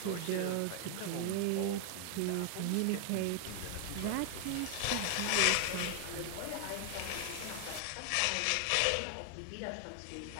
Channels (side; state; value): both; different; correlation 0.00